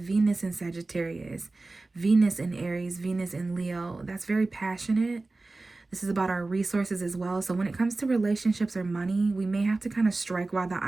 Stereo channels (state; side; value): quieter; left; 3.3 dB